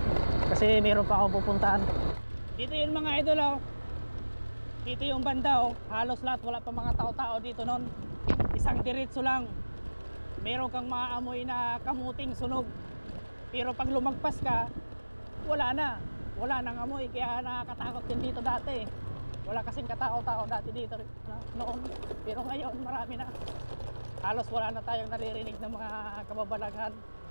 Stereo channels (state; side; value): inverted; both; correlation -1.00